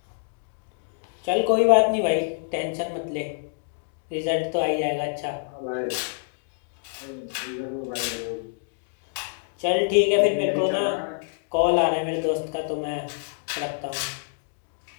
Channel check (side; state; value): right; silent; digital silence